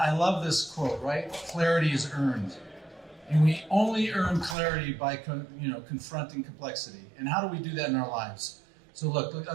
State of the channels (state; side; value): drops out; left; at 4.5 s